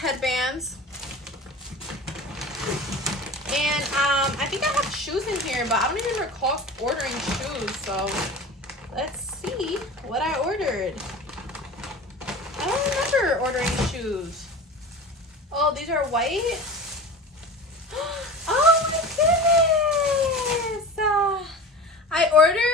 And I think I have shoes in here, but I don't even recall ordering shoes. So let's see what I ordered. I don't remember ordering shoes. Oh, these are white. Oh my goodness! I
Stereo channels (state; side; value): normal; both; correlation 0.34